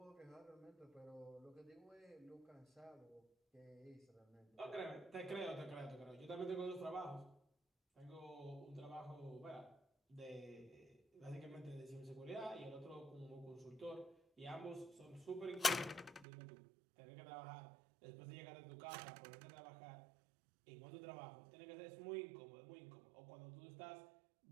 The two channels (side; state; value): left; drops out; at 16.2 s